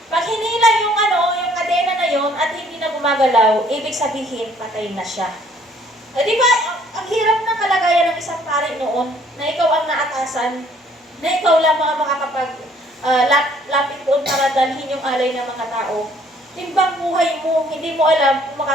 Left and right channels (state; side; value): normal; both; correlation 0.61